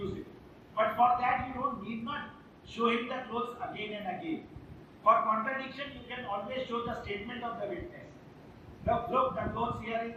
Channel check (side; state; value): both; identical; correlation 1.00